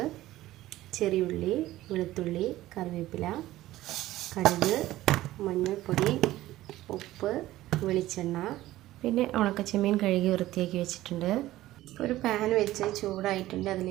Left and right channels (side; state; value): left; quieter; 15.8 dB